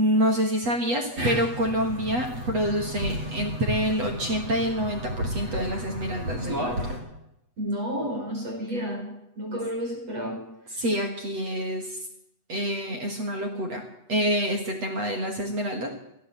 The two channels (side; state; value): left; late; 8.1 ms